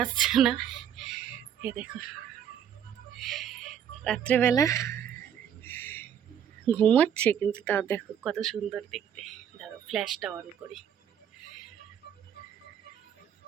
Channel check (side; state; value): left; quieter; 9.0 dB